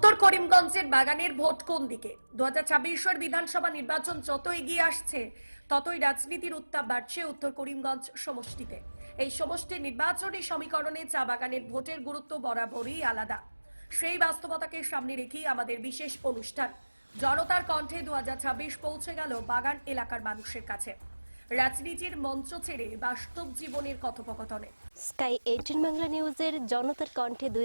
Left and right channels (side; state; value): both; inverted; correlation -1.00